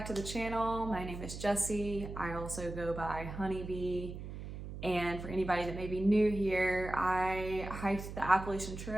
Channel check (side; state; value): right; noise; hum, 9 dB below the sound